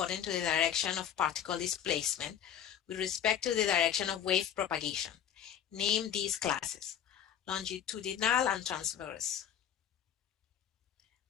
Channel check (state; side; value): quieter; right; 9.4 dB